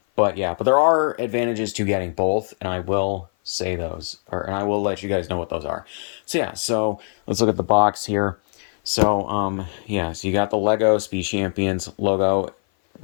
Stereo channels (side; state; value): right; silent; 56 dB below the other